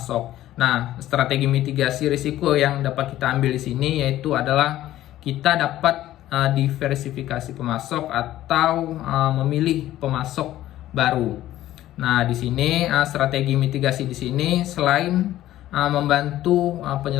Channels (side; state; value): right; quieter; 14.0 dB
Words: Nah, strategi mitigasi risiko yang dapat kita ambil di sini yaitu adalah kita dapat diversifikasi pemasok atau memilih pemasok baru. Nah, di sini strategi mitigasi di sini selain membantu